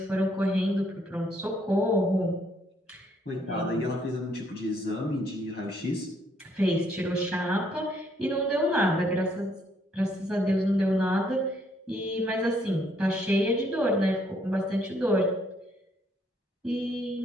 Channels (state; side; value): normal; both; correlation 0.69